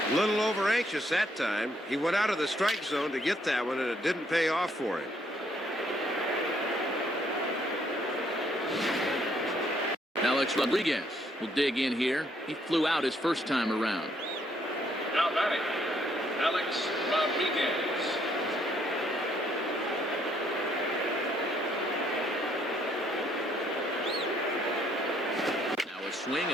A little over anxious that time. He went out of the strike zone to get that one, and it didn't pay off for him. Alex Rodriguez will dig in here. He flew out his first time around. Now batting, Alex Rodriguez. Now a swing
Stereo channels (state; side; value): normal; both; correlation 0.69